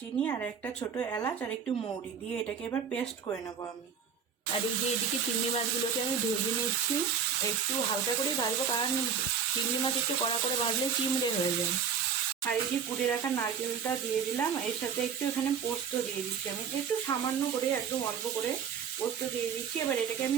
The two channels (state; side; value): quieter; left; 6.8 dB